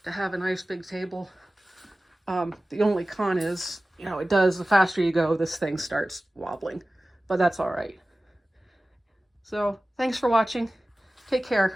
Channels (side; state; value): both; normal; correlation 0.96